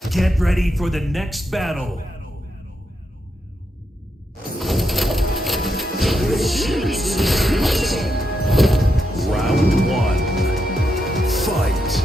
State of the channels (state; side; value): normal; both; correlation 0.83